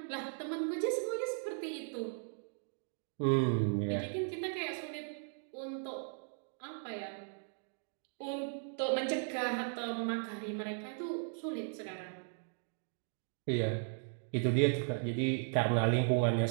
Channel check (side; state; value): left; silent; 53 dB below the other